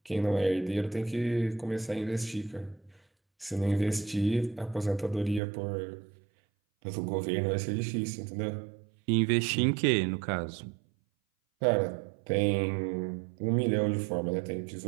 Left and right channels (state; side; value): drops out; left; at 5.4 s